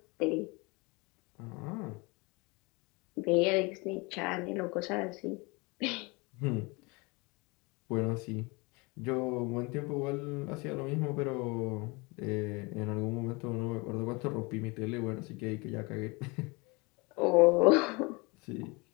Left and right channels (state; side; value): quieter; right; 27.3 dB